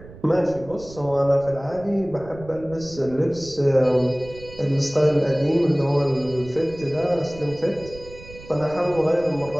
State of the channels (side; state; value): right; noise; rumble, 18 dB below the sound